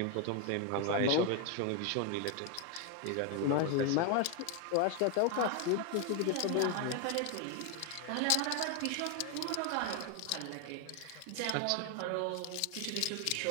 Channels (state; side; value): different; both; correlation 0.01